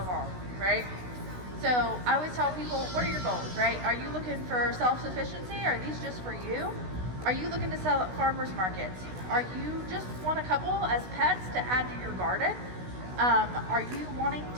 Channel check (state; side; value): late; left; 16 ms